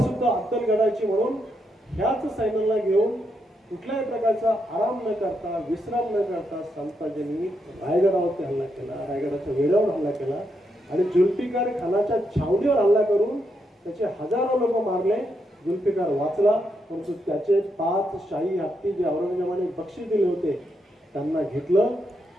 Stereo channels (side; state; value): both; normal; correlation 0.81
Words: अद्दलगडाची म्हणून ह्याच सैन्याला घेऊन कुठल्याही प्रकारचा आराम न करता विश्राम न करता संताजींनी रायगडावरती हल्ला केला, रायगडाच्या वेढ्यावर हल्ला केला आणि जुल्फिकार खानाच्या छावणीवर हल्ला करून त्याचे हजारो लोक मारले. जुल्फिकार वाचला, परंतु त्याचे 5 शाही हत्ती जे औरंगजेबाने बक्षीस दिले होते त्यांना घेतलं